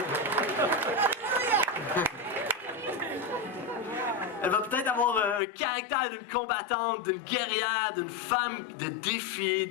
Elle va peut-être avoir un caractère d'une combattante, d'une guerrière, d'une femme de défi,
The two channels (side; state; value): right; drops out; at 5.4 s